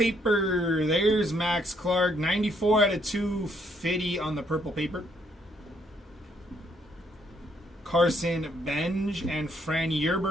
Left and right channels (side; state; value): both; normal; correlation 0.70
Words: There's Max Clark. 94 out of 250 on the purple paper. Carson Benj, and Fran